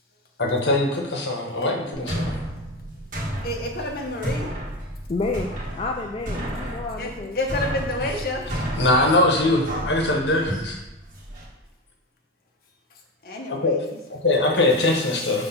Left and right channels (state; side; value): normal; both; correlation 0.19